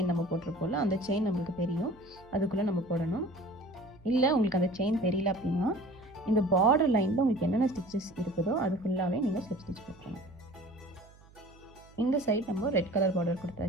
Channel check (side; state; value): right; noise; hum, 25 dB below the sound